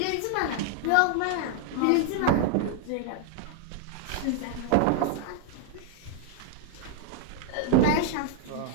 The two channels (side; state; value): both; different; correlation 0.00